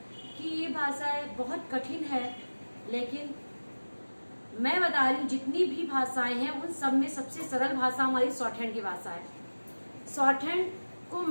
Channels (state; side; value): inverted; both; correlation -1.00